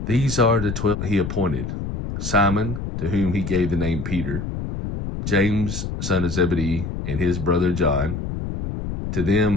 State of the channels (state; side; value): noise; left; rumble, 5 dB below the sound